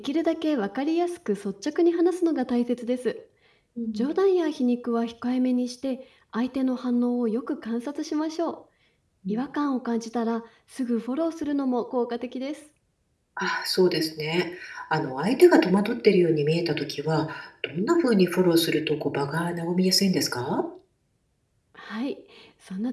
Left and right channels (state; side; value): identical; both; correlation 1.00